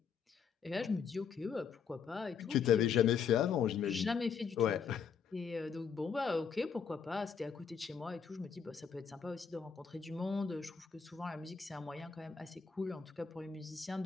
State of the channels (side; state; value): right; quieter; 6.6 dB